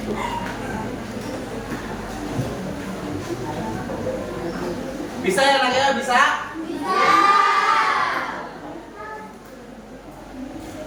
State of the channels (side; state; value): both; identical; correlation 1.00